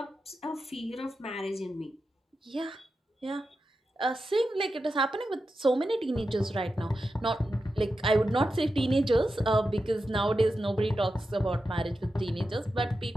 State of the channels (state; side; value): normal; both; correlation 0.90